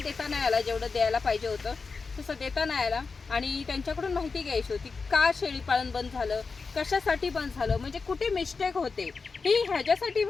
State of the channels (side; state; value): right; quieter; 4.6 dB